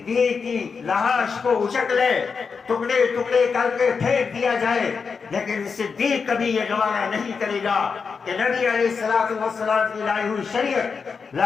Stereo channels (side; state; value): right; quieter; 5.4 dB